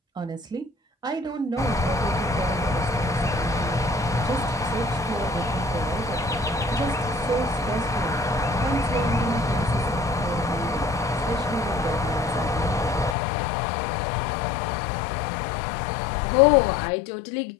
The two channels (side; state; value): right; drops out; at 13.2 s